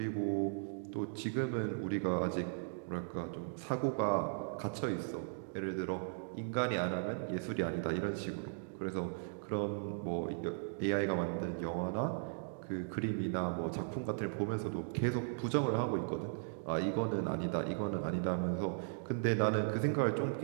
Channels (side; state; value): left; silent; digital silence